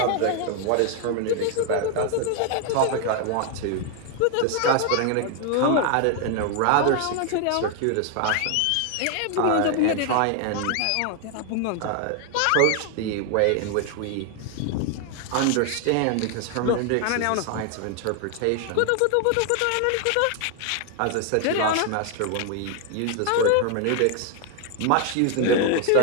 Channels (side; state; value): both; different; correlation 0.00